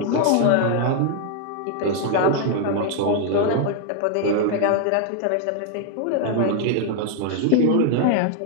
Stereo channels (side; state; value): both; different; correlation 0.00